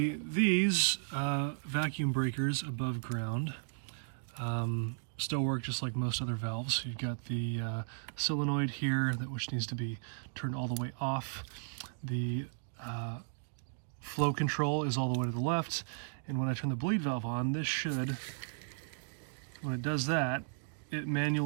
these vacuum breakers above ground still work just like most other valves. You've got the solenoid here, which needs to be turned all the way off. The flow control is all the way to the left, and when I turn the bleed valve on, this should, when it does that, it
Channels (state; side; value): silent; left; digital silence